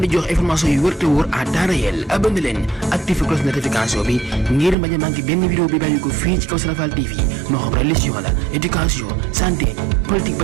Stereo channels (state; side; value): drops out; left; at 4.8 s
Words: di jox information yu wër te wóor à temps réel. abonné leen activé cloche notification bi ngir bañ a manqué benn vidéo bi bàyyi ko fii ci Kawsara Fall TV moo xam religion la éducation santé politique